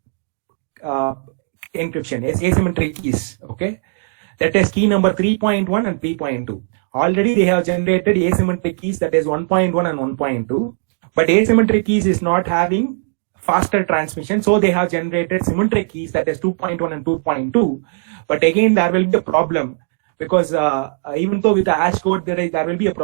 encryption, asymmetric keys. Okay, that is key number 3.1 and 3.2. Already they have generated asymmetric keys, that is 1.1 and 1.2, but asymmetric keys is not having faster transmission, so they have generated symmetric keys, that is 2.1 and 2.2. But again, there will be a problem because even though with the hash code there will be a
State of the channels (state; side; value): silent; left; digital silence